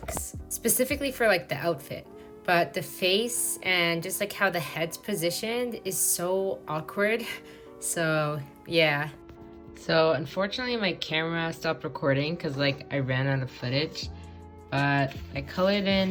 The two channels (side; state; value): both; identical; correlation 1.00